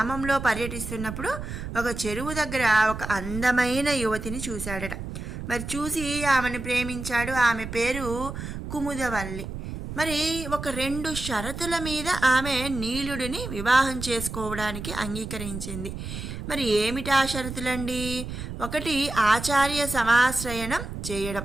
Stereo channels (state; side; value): noise; right; rumble, 8 dB below the sound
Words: పర్యటిస్తున్నప్పుడు ఒక చెరువు దగ్గర ఒక అందమైన యువతిని చూశాడట. మరి చూసి ఆమెను ప్రేమించాడు. ఆమె పేరు కుముదవల్లి. మరి ఒక 2 షరతుల మీద ఆమె నీలుడిని వివాహం చేసుకోవడానికి అంగీకరించింది. మరి ఏమిటా షరతులండి? ఒకటి, ఆచార్య సమాశ్రయణం చేయడం.